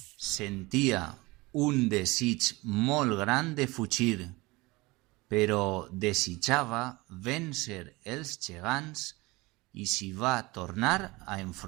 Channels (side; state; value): left; quieter; 22.8 dB